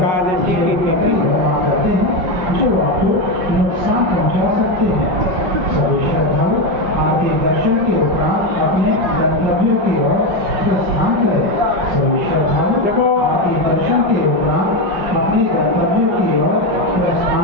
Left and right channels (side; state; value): left; late; 5.7 ms